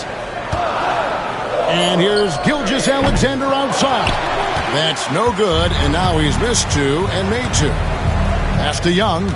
And here's Gilgeous-Alexander outside. That's no good, and now he's missed 2 and made 2. Pass to Young.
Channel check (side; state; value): both; identical; correlation 1.00